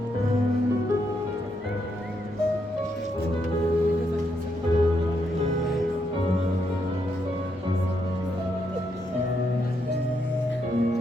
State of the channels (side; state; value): both; normal; correlation 0.78